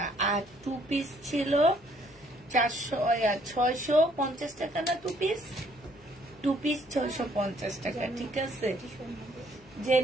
আর 2 পিস ছিল 650 টাকা না? 2 পিস 650 টাকা। ঠিক আছে, যে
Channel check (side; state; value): both; normal; correlation 0.64